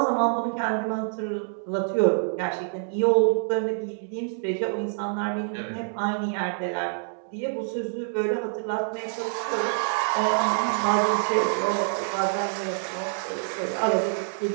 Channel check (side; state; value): left; silent; digital silence